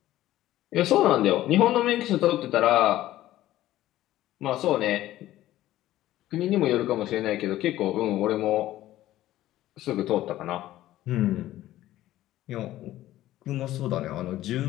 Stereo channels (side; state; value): right; quieter; 14.6 dB